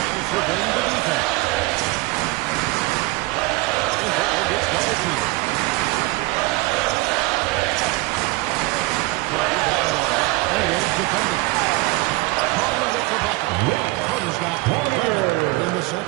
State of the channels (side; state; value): left; quieter; 22.2 dB